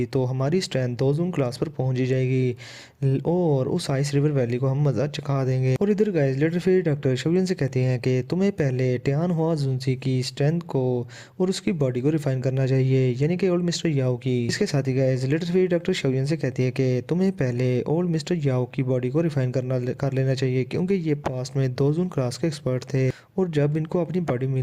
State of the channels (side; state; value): both; identical; correlation 1.00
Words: तो हमारी स्ट्रेंथ दो जून क्लास पर पहुंच ही जाएगी और उस आइस रिवर वैली को हम मजा चखा देंगे। और इधर guys little fairy doctor Shaoyan से कहते हैं कि तुम्हें पहले टियान हुआ जुंजी की स्ट्रेंथ को और उसकी बॉडी को रिफाइन करना चाहिए, यानी कि ओल्ड मिस्टर याओ की। इसके साथ ही guys little fairy doctor Shaoyan से कहती है कि तुम्हें पहले ओल्ड मिस्टर याओ की बॉडी को रिफाइन कर लेना चाहिए, क्योंकि ये पास्ट में दो जून क्लास के एक्सपर्ट थे और जब इनको अपनी बॉडी